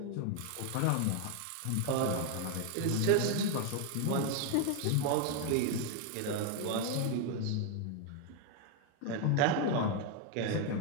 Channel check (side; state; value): both; different; correlation 0.01